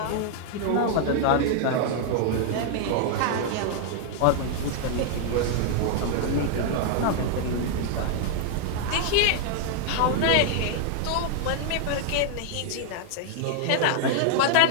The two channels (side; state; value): both; different; correlation 0.00